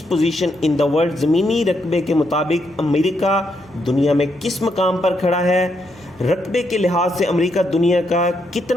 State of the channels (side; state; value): left; noise; hum, 27 dB below the sound